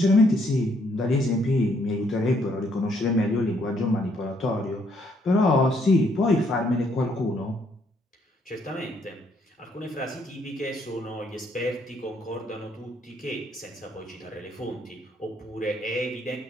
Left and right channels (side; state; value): both; normal; correlation 0.70